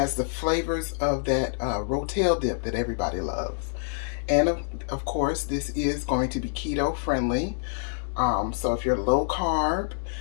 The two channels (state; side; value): silent; right; digital silence